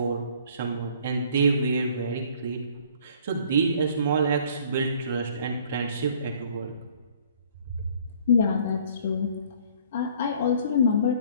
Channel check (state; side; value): inverted; both; correlation -0.55